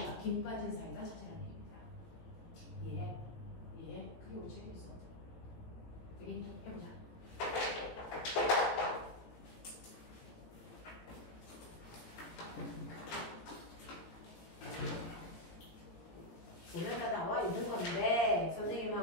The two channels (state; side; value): late; right; 17 ms